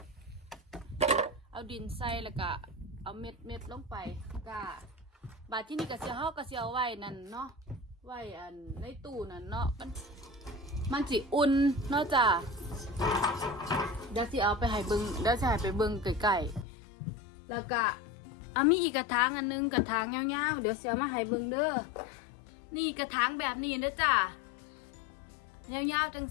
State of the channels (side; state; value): right; drops out; at 16.7 s